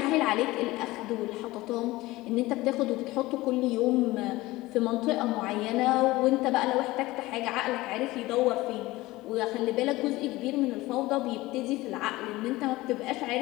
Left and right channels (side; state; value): right; quieter; 19.2 dB